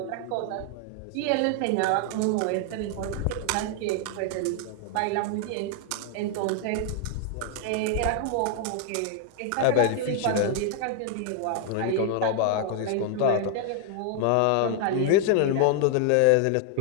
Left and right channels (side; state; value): both; different; correlation 0.00